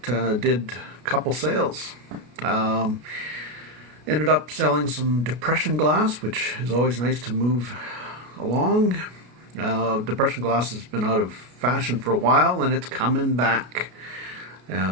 Did a couple sales. Ended up selling some depression glass, which is always nice to move along. Depression glass has been out of fashion for a while, and it's coming back.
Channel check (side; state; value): left; late; 33 ms